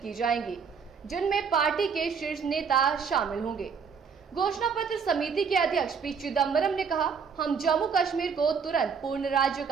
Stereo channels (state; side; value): quieter; left; 6.1 dB